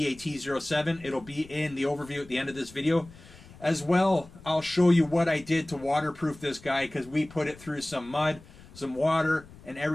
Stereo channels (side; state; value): left; noise; rumble, 21 dB below the sound